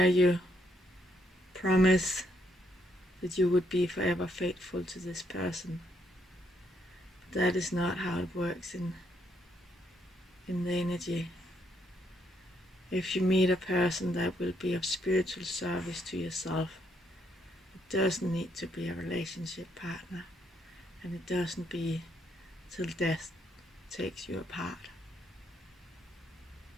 you promise that you would be forever faithful to this person. But that is not how it works in the energy. If you meet a person that will be of spiritual service to yourself, it doesn't need to be a relationship partner, and it doesn't be till death takes you apart.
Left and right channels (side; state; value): both; normal; correlation 0.74